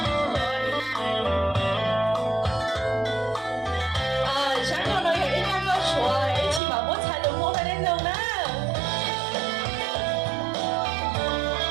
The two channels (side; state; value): left; drops out; at 6.6 s